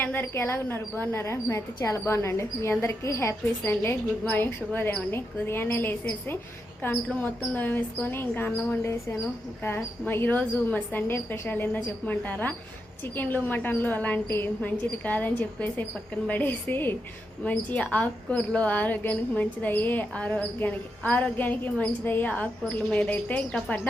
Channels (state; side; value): normal; both; correlation 0.85